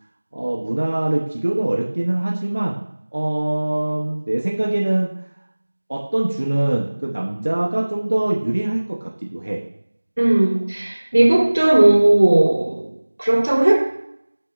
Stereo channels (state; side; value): inverted; both; correlation -1.00